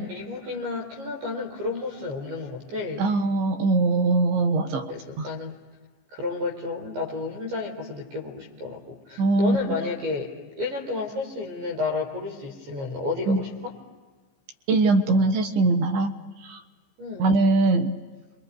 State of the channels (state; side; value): late; left; 15 ms